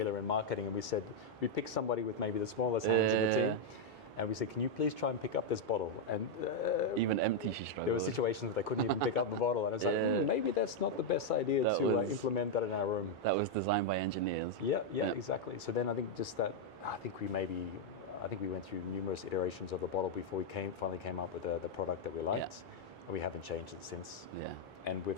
in marketing and we said, we picked somebody with maybe the smallest hands in the team. And we said, can you please try and pick up this bottle? And even empty, she struggled. There were situations where they couldn't even pick up the bottle. And I was like, maybe that's not the best idea to implement that in our room. That was designed by engineers. Yeah, exactly. So then I think I think we went through numerous iterations of the bottle before we finally came up with the product that we liked. And we haven't changed it since. Yeah. And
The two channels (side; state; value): both; normal; correlation -0.01